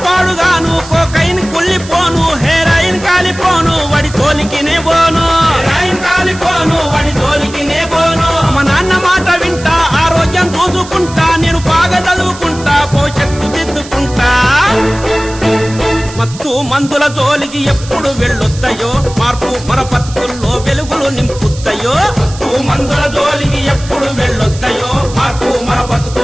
పాడుగాను, కోకైన్ కుళ్ళిపోను, హెరాయిన్ కాలిపోను, వడి తోలికినే పోను. హెరాయిన్ కాలిపోను, వడి తోలికినే పోను. మా నాన్న మాట వింటా, ఆరోగ్యం చూసుకుంటా, నేను బాగా చదువుకుంటా, భవిష్యత్తు దిద్దుకుంటా. మత్తు మందుల జోలికి ఎప్పుడు వెళ్ళొద్దయో, మార్పు మన బతుకుల్లో వెలుగులు నింపుద్దయో. మత్తు మందుల జోలికి ఎప్పుడు వెళ్ళొద్దయో, మార్పు మన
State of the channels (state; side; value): noise; right; hiss, 16 dB below the sound